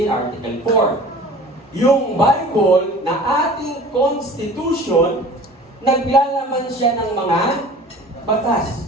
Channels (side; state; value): both; normal; correlation 0.43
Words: Article 4. Yung Bible na ating Constitution, naglalaman siya ng mga